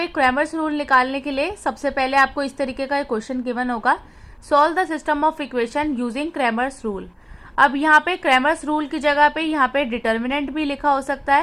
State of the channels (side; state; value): both; identical; correlation 1.00